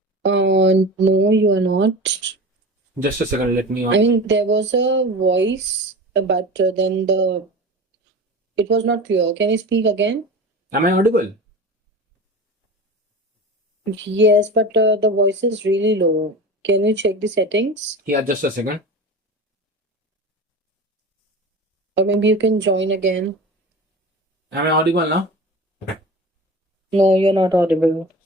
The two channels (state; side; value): normal; both; correlation 0.32